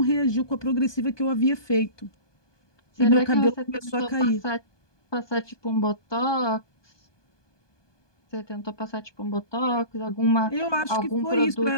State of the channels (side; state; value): right; late; 1.2 ms